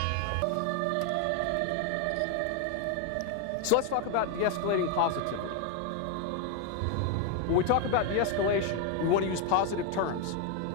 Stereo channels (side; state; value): both; different; correlation 0.01